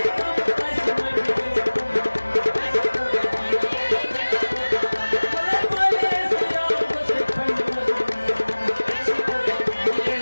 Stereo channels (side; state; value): both; inverted; correlation -1.00